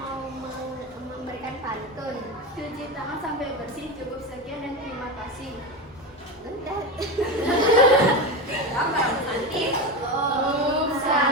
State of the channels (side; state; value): both; normal; correlation 0.20